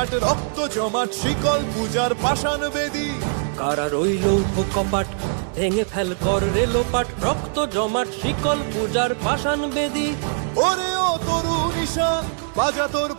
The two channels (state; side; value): silent; left; digital silence